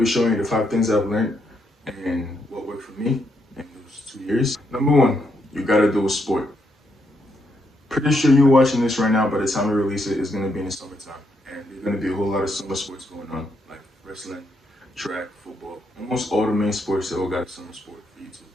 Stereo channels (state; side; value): normal; both; correlation 0.78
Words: showing you the 5 things I've learned and what worked for me in those 2 years. Number one, you gotta do a sport. Pretty sure you're watching this right now. By the time we release it, it's going to be in the summertime. And there's going to be a whole lot of summer sports going on, like wrestling, track, football. Almost all the main sports, they all got a summer sport for you to